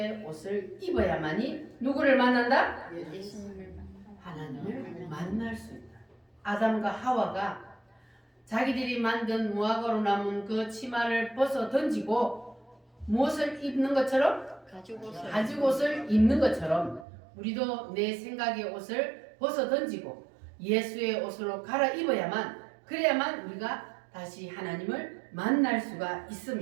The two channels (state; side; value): drops out; left; at 17.1 s